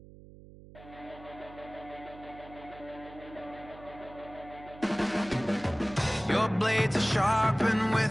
Your blades are sharpened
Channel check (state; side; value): noise; right; hum, 19 dB below the sound